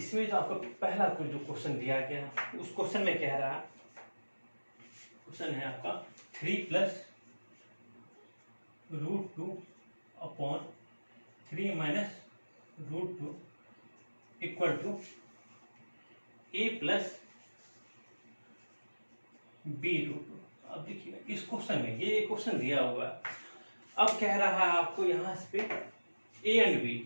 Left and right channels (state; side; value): inverted; both; correlation -1.00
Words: जो आपको पहला जो क्वेश्चन दिया गया, उस क्वेश्चन में कह रहा है, क्वेश्चन है आपका 3 plus √2 upon 3 minus √2 equal to a plus b √2। अब देखिए इस क्वेश्चन में ये क्वेश्चन दिया हुआ है। अब कह रहा है आपको यहाँ पे ए एंड